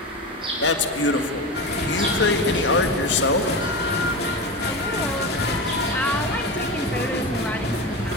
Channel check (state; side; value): normal; both; correlation 0.23